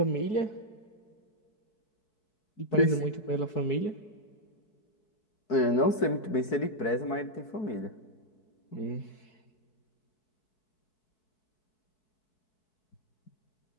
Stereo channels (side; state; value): right; late; 4.6 ms